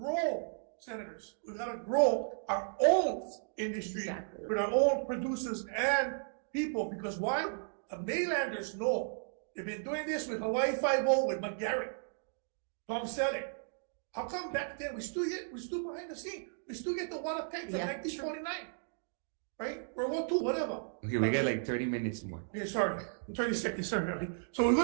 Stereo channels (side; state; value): left; silent; digital silence